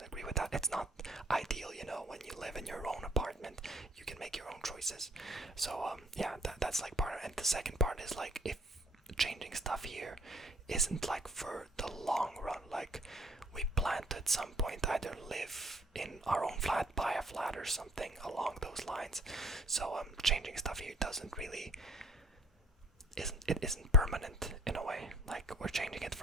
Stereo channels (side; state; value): both; normal; correlation 0.59